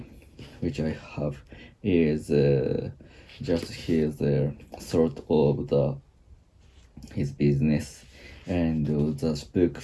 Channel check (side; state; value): both; identical; correlation 1.00